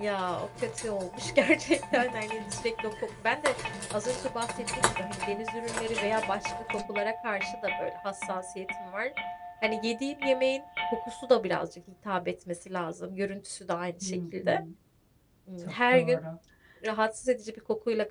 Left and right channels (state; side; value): identical; both; correlation 1.00